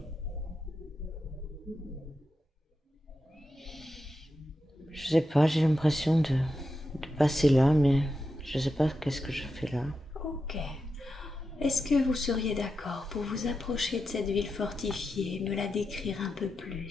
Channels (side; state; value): both; normal; correlation 0.88